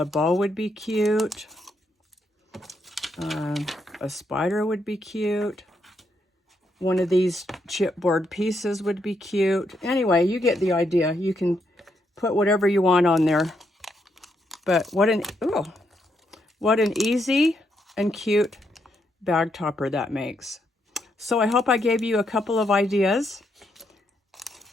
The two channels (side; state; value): both; normal; correlation 0.78